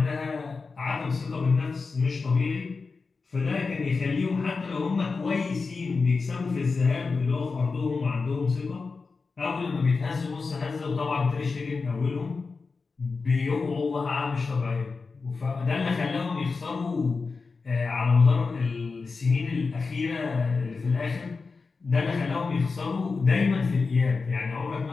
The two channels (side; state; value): right; quieter; 4.4 dB